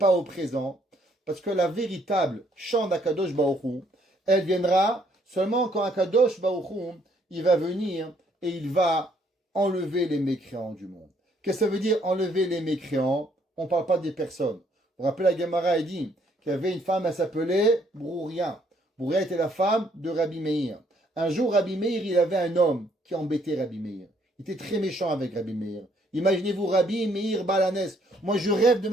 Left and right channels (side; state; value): both; normal; correlation 0.67